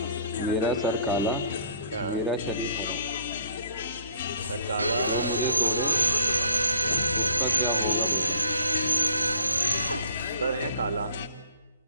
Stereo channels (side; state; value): both; inverted; correlation -0.57